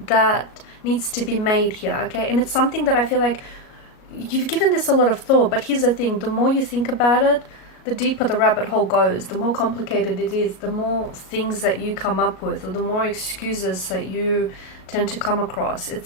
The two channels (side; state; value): right; late; 37 ms